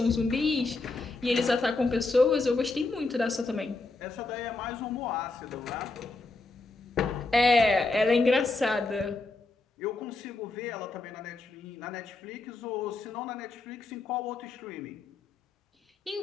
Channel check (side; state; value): right; quieter; 3.5 dB